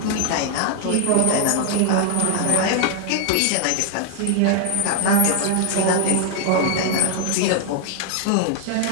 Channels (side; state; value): both; different; correlation 0.00